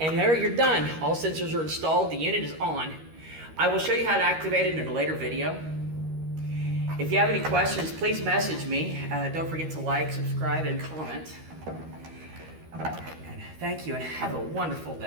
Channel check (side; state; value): left; late; 13 ms